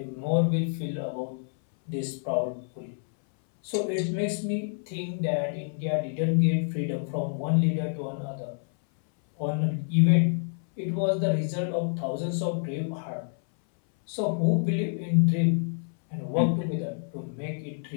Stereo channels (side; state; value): right; silent; 59 dB below the other